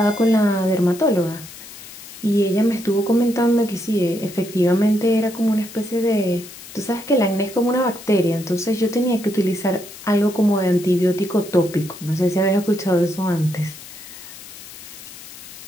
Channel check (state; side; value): noise; left; hiss, 16 dB below the sound